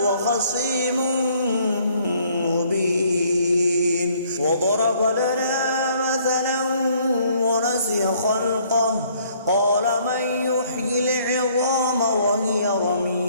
خصيم مبين وضرب لنا مثلا ونسي خلقه قال من يحيي العظام وهي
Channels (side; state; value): both; inverted; correlation -0.63